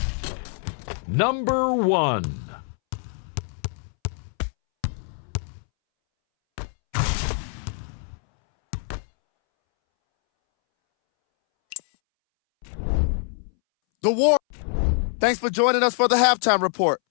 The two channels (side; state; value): right; silent; 62 dB below the other